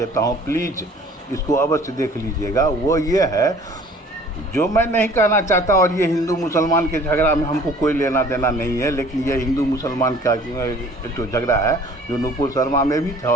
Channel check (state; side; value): normal; both; correlation 0.51